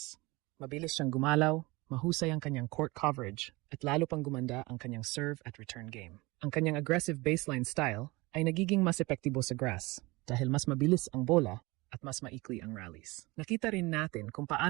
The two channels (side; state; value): left; quieter; 23.2 dB